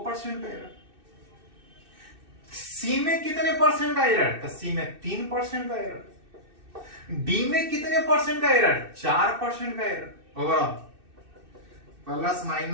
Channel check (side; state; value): left; late; 2.6 ms